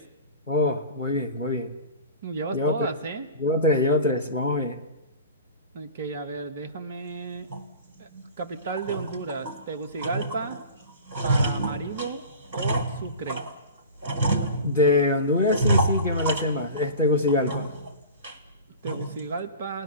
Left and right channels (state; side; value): inverted; both; correlation -0.36